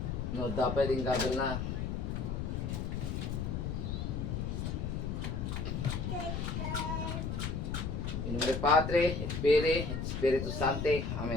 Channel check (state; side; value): noise; left; rumble, 2 dB below the sound